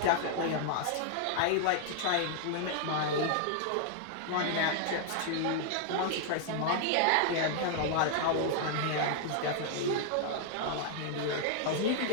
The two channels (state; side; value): different; both; correlation 0.00